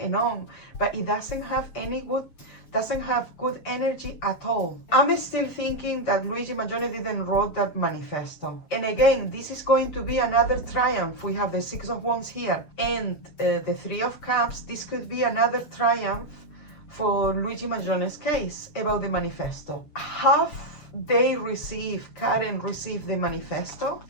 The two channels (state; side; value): late; right; 6.9 ms